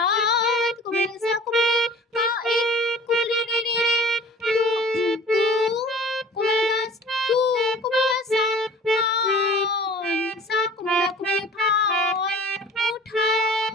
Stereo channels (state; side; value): normal; both; correlation 0.46